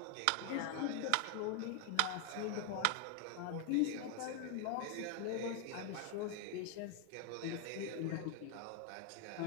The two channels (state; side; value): different; both; correlation 0.01